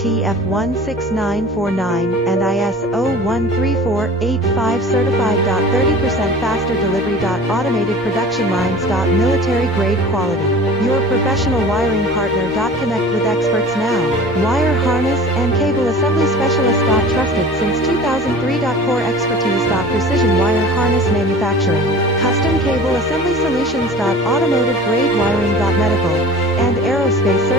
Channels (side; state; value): both; normal; correlation 0.40